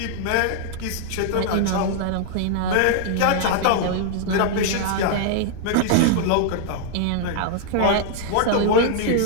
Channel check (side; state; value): both; different; correlation -0.01